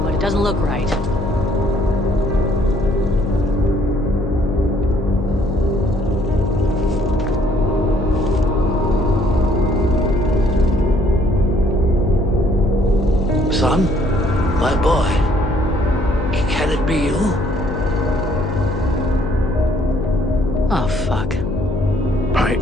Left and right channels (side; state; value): left; noise; hum, 5 dB below the sound